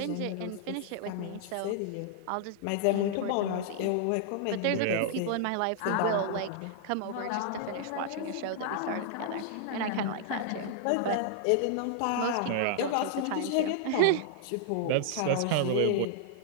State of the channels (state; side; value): different; both; correlation -0.01